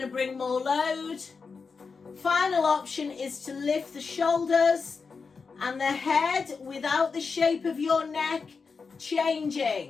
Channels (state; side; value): quieter; right; 5.0 dB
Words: to bring more load. Final option is to lift the shoulders and the head without the shape of your neck